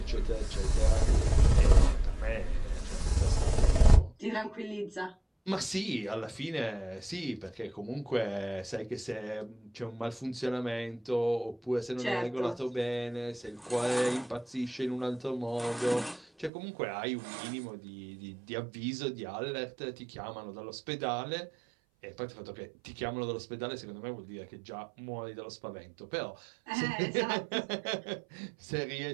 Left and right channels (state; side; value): drops out; left; at 16.5 s